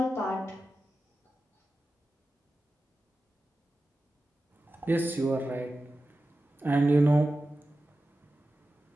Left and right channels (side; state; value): both; normal; correlation 0.93